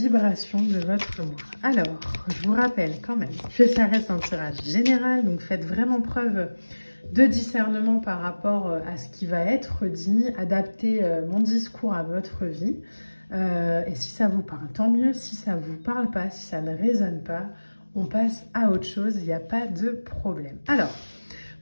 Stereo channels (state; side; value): inverted; both; correlation -1.00